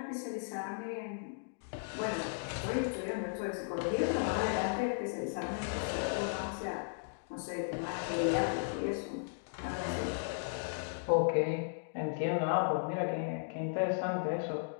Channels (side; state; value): right; silent; digital silence